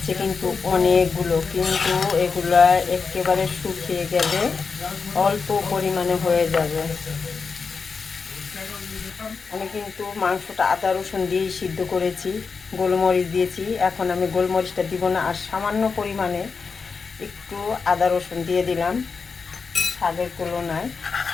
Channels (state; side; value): quieter; right; 5.1 dB